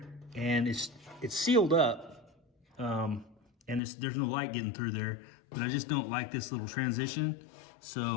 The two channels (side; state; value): right; drops out; at 3.8 s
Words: and it's sealed up, and there's no light getting through there, but I just don't like this little transition.